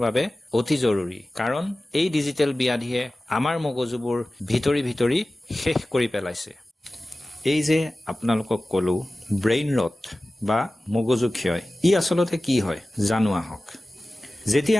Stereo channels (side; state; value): both; normal; correlation 0.96